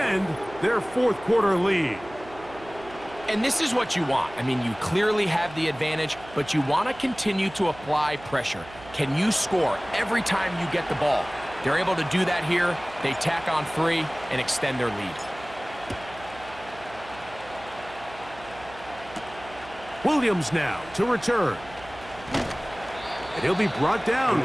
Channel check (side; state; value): right; noise; hum, 18 dB below the sound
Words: their 4th quarter lead. And this is what you want. I mean, you clearly have the advantage, but you want to continue to apply pressure. Can you score every time you get the ball? They're able to do that here. They tack on 3 and extend their lead. Williams now to return. And he'll be brought down